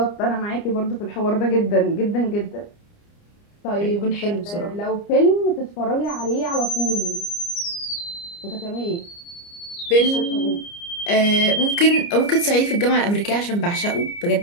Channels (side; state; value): right; late; 29 ms